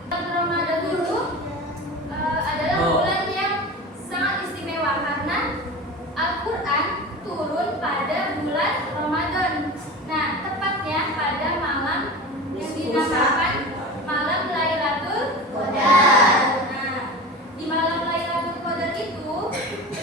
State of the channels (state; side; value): normal; both; correlation 0.31